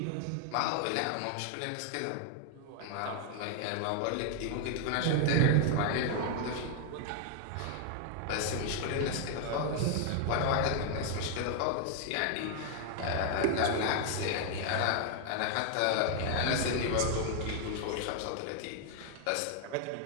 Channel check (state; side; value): different; both; correlation 0.00